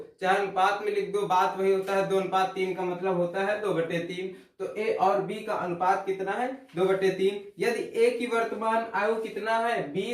चाहे अनुपात में लिख दो, बात वही होता है। 2:3 का मतलब होता है 2/3। तो ए और बी का अनुपात कितना है, 2/3। यदि ए की वर्तमान आयु कितना है,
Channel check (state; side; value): identical; both; correlation 1.00